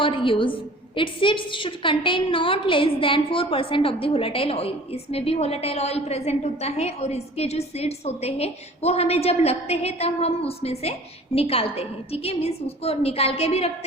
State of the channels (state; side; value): normal; both; correlation 0.46